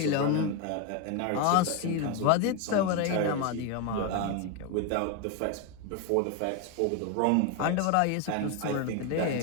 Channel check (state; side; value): different; both; correlation 0.02